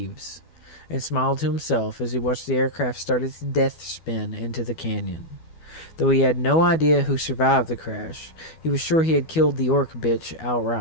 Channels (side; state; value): right; late; 12 ms